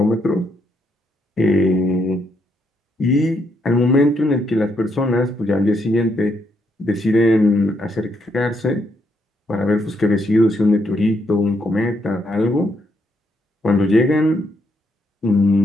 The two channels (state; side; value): normal; both; correlation 0.76